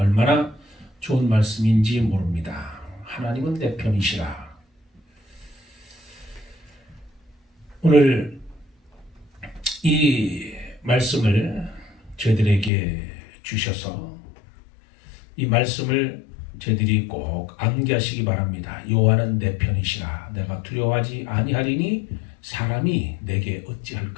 좋은 말씀인지 모릅니다. 하나님은 내 편이시라. 오늘 이 말씀을 저희들에게 주셔서 이 말씀을 저희들이 꼭 암기하시기 바랍니다. 여호와는 내 편이시라. 내가 두려워하지 아니하리니 사람이 내게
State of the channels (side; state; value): right; drops out; at 12.7 s